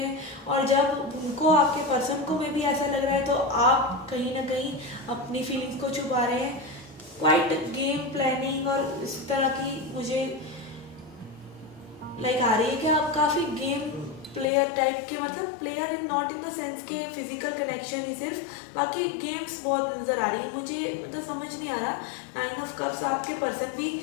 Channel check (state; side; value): drops out; right; at 14.5 s